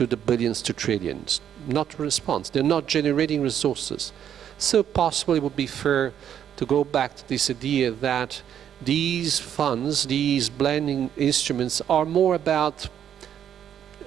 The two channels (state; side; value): quieter; left; 9.5 dB